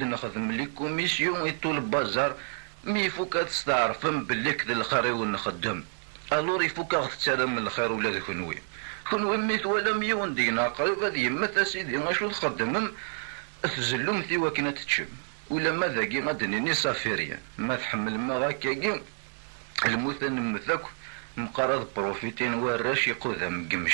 لي كوميسيون يطول البازار مي فوكا تستعرفم باللي كذا الخير ونخدم الور يفوكا تسالم الخير ولا كنوي كون ميت ولا ميون دينا قريب هذه يمثل سيدي غاشو تخدمم تزلم ثي وكنا تتشم ولا ما ذاكي غادنيني صافيريا ما تحمل ما غاكاكي المثل نمثاك مقارض بروفيتين وراش يقوذا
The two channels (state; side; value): silent; left; 59 dB below the other